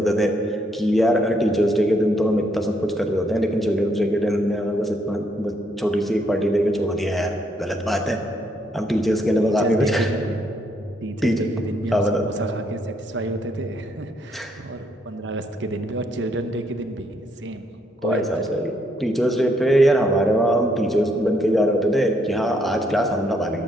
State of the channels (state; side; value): normal; both; correlation 0.73